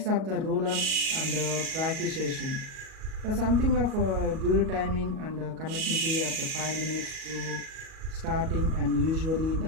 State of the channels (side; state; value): left; late; 37 ms